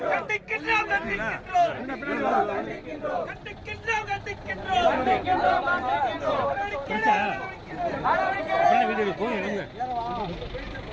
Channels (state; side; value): identical; both; correlation 1.00